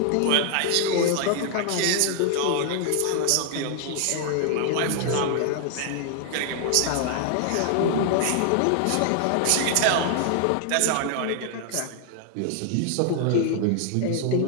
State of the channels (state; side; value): different; both; correlation 0.00